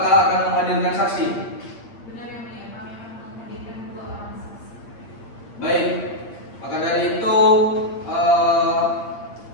akan menghadirkan saksi? Benar ya mulia, kami akan menghadirkan 2 orang saksi. Baik, maka dari itu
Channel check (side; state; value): right; late; 8.7 ms